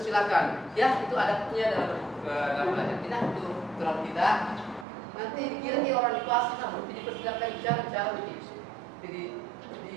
ya, itu adabnya dalam belajar kita, itu aturan kita. Nanti dikira orang di kelas kita berarti dipersilakan bicara begitu. Jadi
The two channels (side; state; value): left; drops out; at 4.9 s